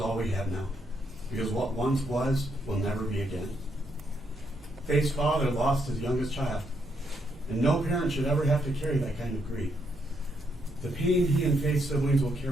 all we have now, because what once was will never be again. Faith's father lost his youngest child, and no parent should ever have to carry that kind of grief. The pain he and Faith's siblings will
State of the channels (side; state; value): both; normal; correlation 0.76